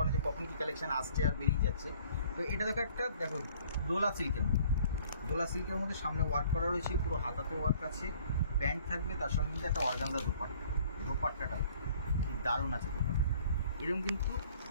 যে কখন কী কালেকশন আসছে আর বেরিয়ে যাচ্ছে। তো এটা দেখো, একটা দেখো দোলা সিল্কের মধ্যে সামনে ওয়ার্ক করা রয়েছে, পুরো হাতাতে ওয়ার্ক আছে, প্যান্ট থাকবে, তার সঙ্গে কিন্তু একটা অর্গানজা দোপাট্টাটা দারুণ আছে। দোপাট্টাটা এরকম কিন্তু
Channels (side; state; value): both; inverted; correlation -0.56